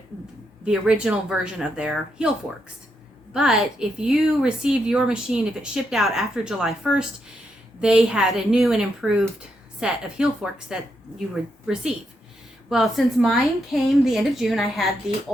the original version of their heel forks. But if you received your machine, if it shipped out after July 1st, they had a new and improved set of heel forks that you would receive. Well, since mine came the end of June, I had the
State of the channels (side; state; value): both; normal; correlation 0.81